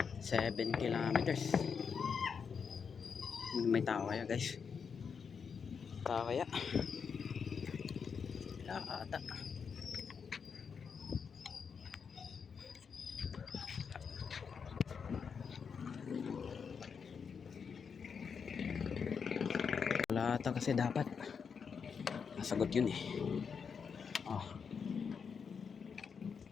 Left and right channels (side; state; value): right; quieter; 6.2 dB